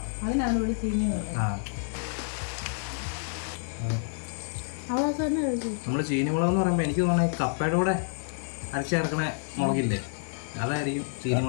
അതിനാണ് ഇവിടെ ചീനി നമ്മൾ ചീനി മുളക് എന്ന് പറയുമ്പോൾ എനിക്ക് തോന്നുന്നത് കപ്പയുടെ കൂടെ അരച്ച് ചേർക്കണ മുളകില്ലേ, അതായിരിക്കും ചീനി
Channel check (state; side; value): silent; right; digital silence